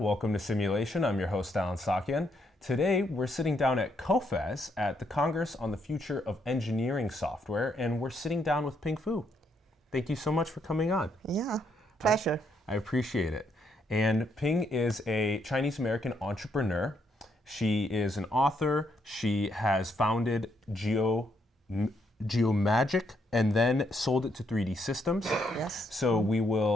welcome to Simulation. I'm your host Alan Sakyan. Today we're sitting down at COFES at the Congress on the Future of Engineering Software, and we're sitting down with Ping Fu. Thank you so much for coming on. Yeah, pleasure. I appreciate it. And Ping is a Chinese-American entrepreneur. She is an author. She has founded Geomagic and then sold it to 3D Systems. Yes. So we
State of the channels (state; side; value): normal; both; correlation 0.75